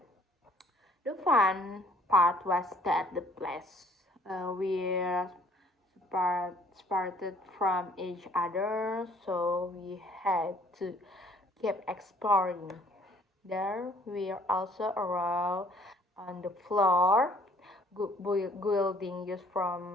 The fun part was that the place separated from each other, so we had to keep exploring. There we also arrived on the floor, building just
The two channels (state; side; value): normal; both; correlation 0.59